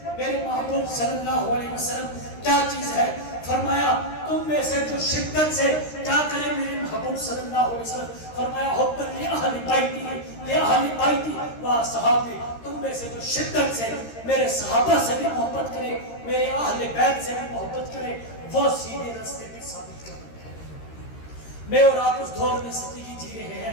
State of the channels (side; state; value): right; late; 13 ms